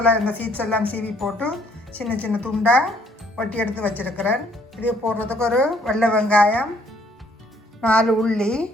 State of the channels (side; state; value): both; normal; correlation 0.64